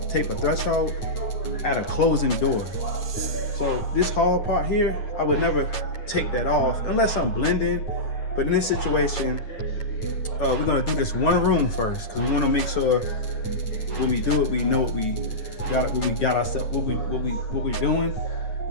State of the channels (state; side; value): late; right; 9.2 ms